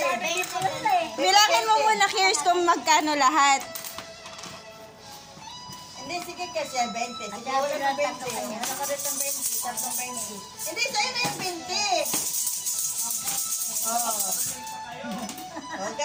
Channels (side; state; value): both; identical; correlation 1.00